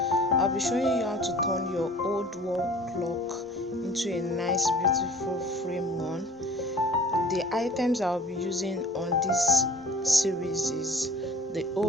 I'll be showing you how to turn your old wall clock into a nice beautiful frame one. The items I'll be using on this series is the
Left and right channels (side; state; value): both; normal; correlation 0.46